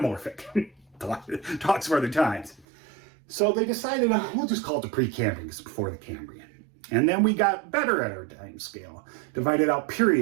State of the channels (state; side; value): drops out; left; at 2.7 s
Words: Talks for other times. So they decided, we'll just call it the Precambrian because it's before the Cambrian. And then we got better at our time scale, divided out